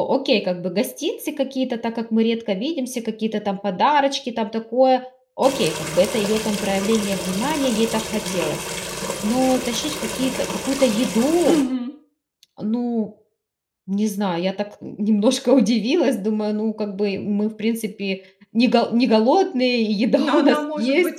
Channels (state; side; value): identical; both; correlation 1.00